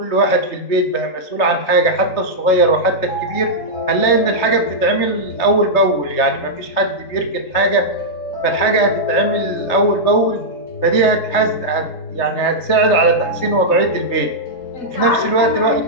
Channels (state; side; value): late; right; 3.3 ms